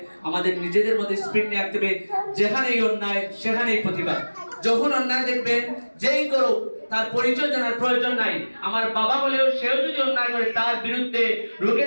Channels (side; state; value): both; inverted; correlation -1.00